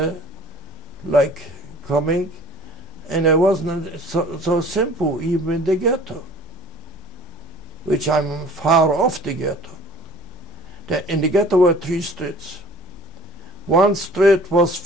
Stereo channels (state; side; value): normal; both; correlation 0.49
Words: like coming. And it wasn't so simple, even in the ghetto, which I'm far off the ghetto. In the ghetto were 3 streets. One street was